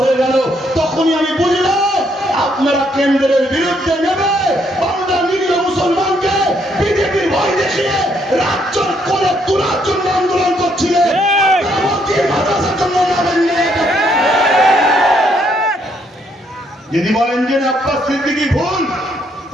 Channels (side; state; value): both; normal; correlation 0.71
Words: হয়ে গেল। তখনই আমি বুঝলাম আপনারা কেন্দ্রের বিরুদ্ধে নেবে বাংলার নিরীহ মুসলমানকে বিজেপির ভয় দেখিয়ে রাজ্যের কোলে তোলার জন্য আন্দোলন করছিলেন। যদি বলেন যে আব্বাস সিদ্দিকী ভুল,